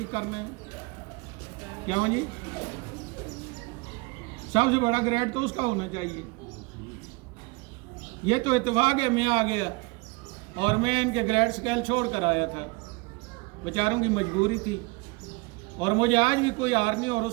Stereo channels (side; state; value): left; quieter; 25.7 dB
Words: کرنا ہے۔ کیا جی؟ سب سے بڑا گریڈ تو اس کا ہونا چاہیے۔ یہ تو اتفاق ہے میں آ گیا اور میں ان کے گریڈ سکیل چھوڑ کر آیا تھا، بیچاروں کی مجبوری تھی، اور مجھے آج بھی کوئی ہار نہیں اور